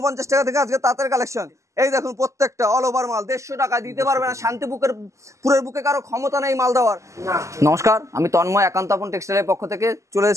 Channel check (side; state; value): left; late; 0.15 ms